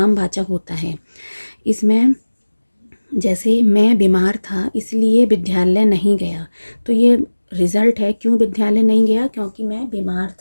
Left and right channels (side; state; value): both; inverted; correlation -1.00